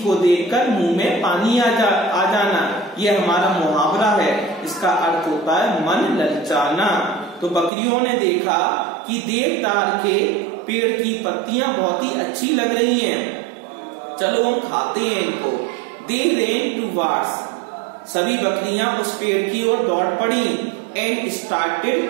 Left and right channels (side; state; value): left; drops out; at 7.7 s